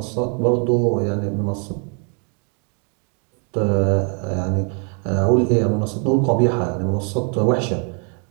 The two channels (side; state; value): left; quieter; 39.3 dB